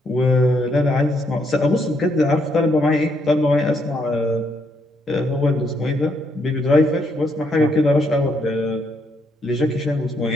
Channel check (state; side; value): normal; both; correlation 0.74